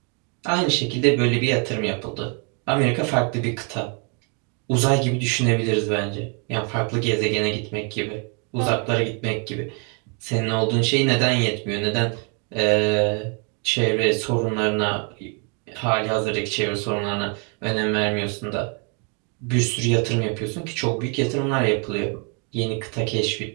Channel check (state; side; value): quieter; left; 35.4 dB